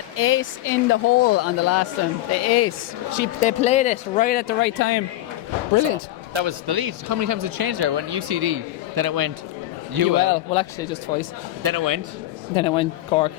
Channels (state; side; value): quieter; right; 15.0 dB